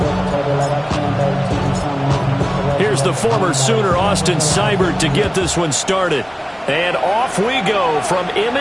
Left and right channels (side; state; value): both; identical; correlation 1.00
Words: Here's the former Sooner, Austin Seibert, to get this one started. And off we go from